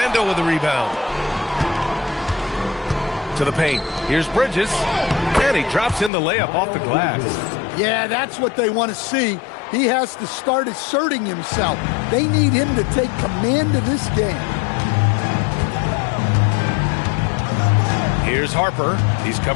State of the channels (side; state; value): right; drops out; at 6.1 s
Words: with the rebound. To the paint. Here's Bridges. And he drops in the layup off the glass. Yeah, that's what they want to see. He has to start asserting himself. They need him to take command of this game. Here's Harper. He's